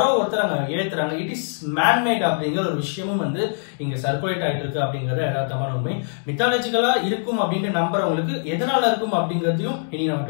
ஒருத்தர் அங்க ஏத்துறாங்க, இட் இஸ் மேன்மேட் அப்படிங்கிற ஒரு விஷயமும் வந்து இங்க சர்க்குலேட் ஆயிட்டு இருக்கு அப்படிங்கறத யதார்த்தமான உண்மை. மித்தாலஜிக்கலா இருக்கும் அப்படின்னு நம்புறவங்களுக்கு எதனால இருக்கும் அப்படிங்கறதையும் இனி நம்ம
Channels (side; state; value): right; silent; digital silence